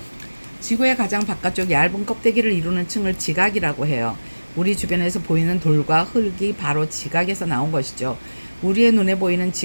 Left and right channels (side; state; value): both; inverted; correlation -1.00